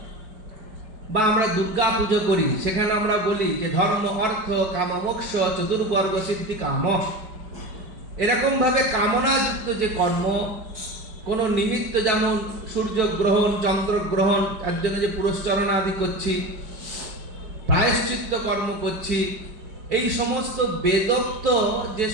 বা আমরা দুর্গা পুজো করি, সেখানে আমরা বলি যে ধর্ম অর্থ কাম মোক্ষ চতুর্বর্গ সিদ্ধি কাম। এরকম ভাবে কামনাযুক্ত যে কর্ম, কোনো নিমিত্ত, যেমন সূর্যগ্রহণ চন্দ্রগ্রহণ, তার জন্য যে পুরস্চরণ আদি করছি, প্রায়শ্চিত্ত কর্ম করছি, এই সমস্ত বেদোক্ত যে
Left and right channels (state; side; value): late; left; 5.0 ms